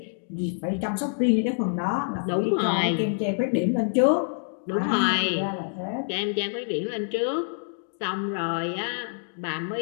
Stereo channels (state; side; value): silent; right; digital silence